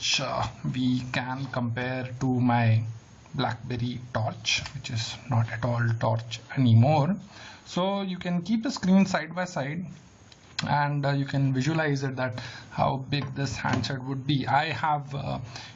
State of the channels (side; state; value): both; identical; correlation 1.00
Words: we can compare to my BlackBerry Torch, which is not at all Torch anymore. So you can keep the screen side by side, and you can visualize it that how big this handset would be. I have